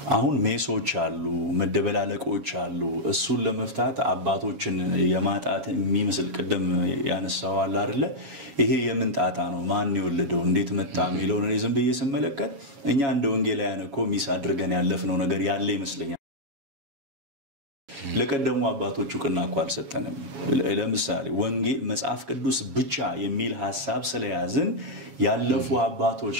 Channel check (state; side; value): late; left; 7.3 ms